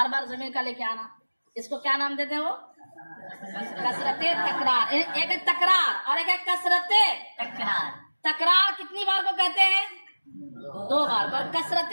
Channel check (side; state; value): both; inverted; correlation -1.00